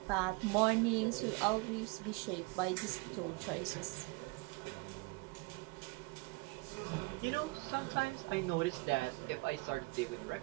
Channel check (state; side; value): quieter; left; 26.1 dB